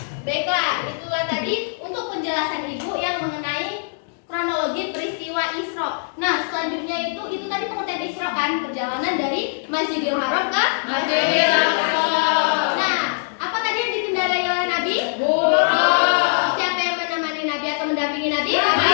Baiklah, itulah tadi untuk penjelasan Ibu yang mengenai kronologi peristiwa Isra. Nah, selanjutnya itu tadi pengertian Isra kan, perjalanan dari Masjidil Haram ke Masjidil Aqsa. Nah, apa tadi yang dikendarai oleh Nabi? Buraq. Siapa yang menemani Nabi atau mendampingi Nabi?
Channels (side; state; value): right; silent; digital silence